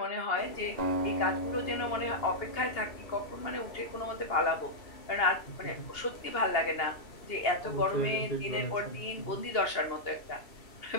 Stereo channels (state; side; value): late; right; 2.8 ms